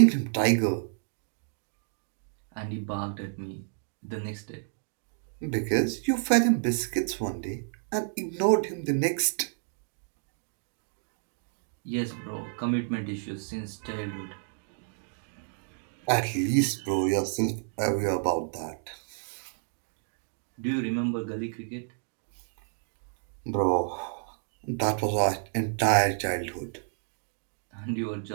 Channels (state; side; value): silent; left; digital silence